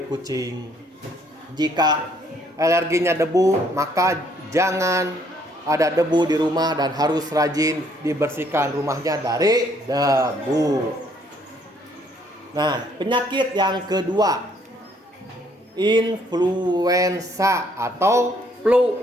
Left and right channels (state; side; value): normal; both; correlation 0.66